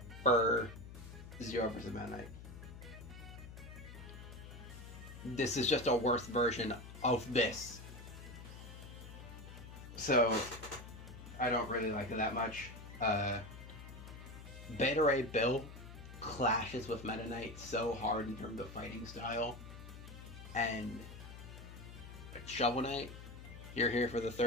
for Zero versus Meta Knight. This is just a worse version of this. So, I don't really like it that much. Beta Ray Bill clashes with Meta Knight so hard in terms of fighting style. And Shovel Knight, you're here for the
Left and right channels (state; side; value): noise; left; hum, 13 dB below the sound